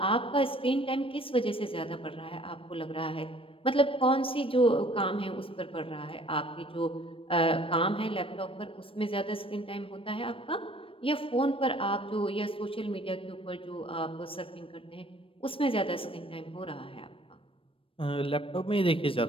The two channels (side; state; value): right; late; 0.26 ms